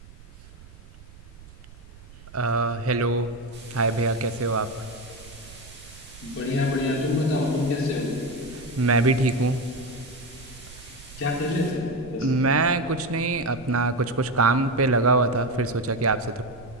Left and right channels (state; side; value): noise; right; rumble, 20 dB below the sound